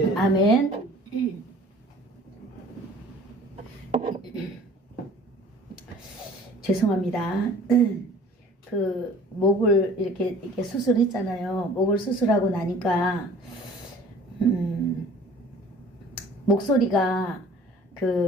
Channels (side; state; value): both; normal; correlation 0.49